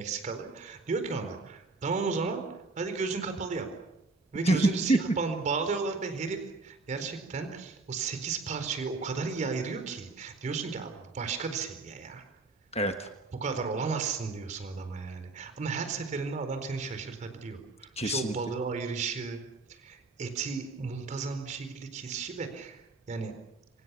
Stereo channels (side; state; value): left; quieter; 3.5 dB